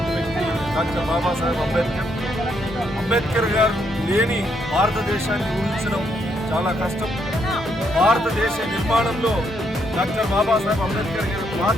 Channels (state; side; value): normal; both; correlation 0.75